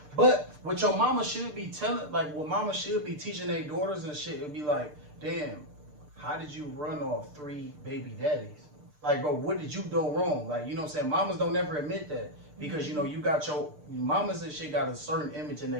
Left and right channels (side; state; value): left; late; 6.7 ms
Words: But what your mama should be telling, like what mama should be teaching their daughters and shit, would be like, damn, how did you run off 3 baby daddies? Like, bro, what did you do wrong? Like, you know what I'm saying? Mamas don't never admit that. Because, you know, you got your mamas and shit got a certain image in